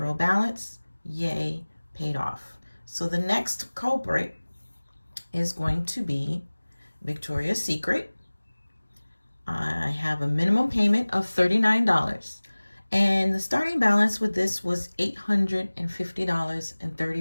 balance. Yay, paid off. So the next culprit is going to be Victoria's Secret. I have a minimum payment of $39. And the starting balance with this was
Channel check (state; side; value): inverted; both; correlation -1.00